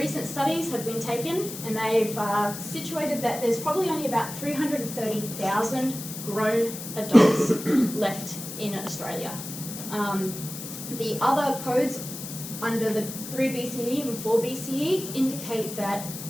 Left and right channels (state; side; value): noise; left; hiss, 9 dB below the sound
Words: studies have been taken, and they've situated that there's probably only about 330,000 grown adults left in Australia. The other codes under the 3BCE and 4BCE indicate that